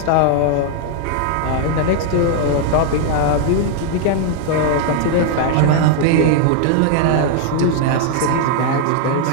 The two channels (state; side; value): different; both; correlation 0.00